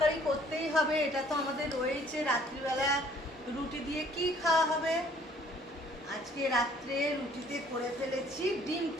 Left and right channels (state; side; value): normal; both; correlation 0.58